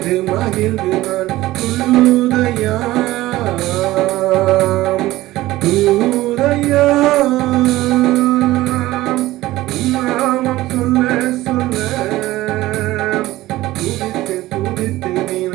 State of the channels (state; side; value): quieter; left; 17.0 dB